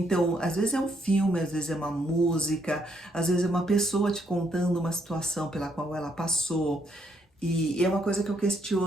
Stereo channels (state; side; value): normal; both; correlation 0.73